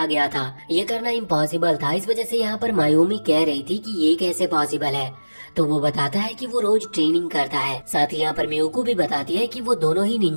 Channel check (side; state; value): both; inverted; correlation -1.00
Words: गया था। ये करना इम्पॉसिबल था, इस वजह से यहाँ पर मायूमी कह रही थी कि ये कैसे पॉसिबल है, तो वो बताता है कि वो रोज ट्रेनिंग करता है। साथ ही यहाँ पर मियुको भी बताती है कि वो दोनों ही